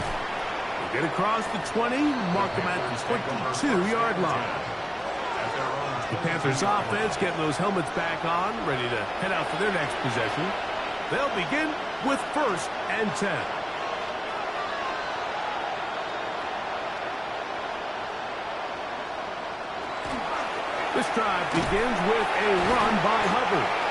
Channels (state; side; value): identical; both; correlation 1.00